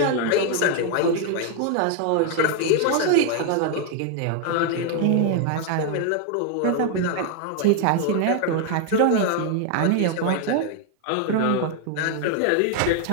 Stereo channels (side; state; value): both; different; correlation 0.01